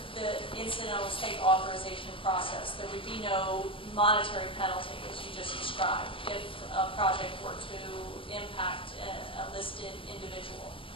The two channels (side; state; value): right; late; 0.25 ms